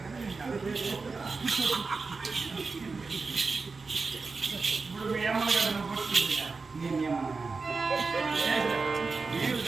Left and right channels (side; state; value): left; quieter; 4.3 dB